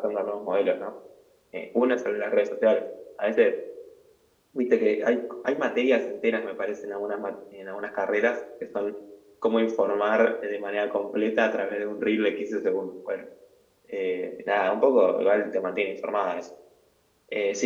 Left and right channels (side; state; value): both; identical; correlation 1.00